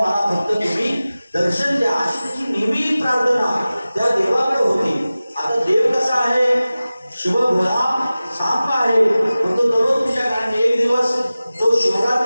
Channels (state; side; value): inverted; both; correlation -0.97